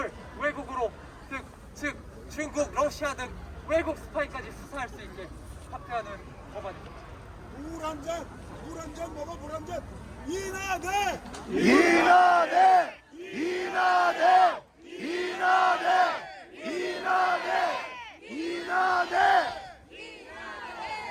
외국으로 즉 중국, 러시아 등 외국 스파이까지 수사할 수 있게 확대하는 법안입니다. 물 한 잔 먹어, 물 한 잔. 이나대! 이나대! 이나대! 이나대! 이나대! 이나대!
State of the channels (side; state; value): both; identical; correlation 1.00